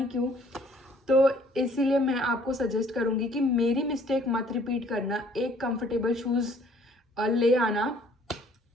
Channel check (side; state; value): both; normal; correlation 0.59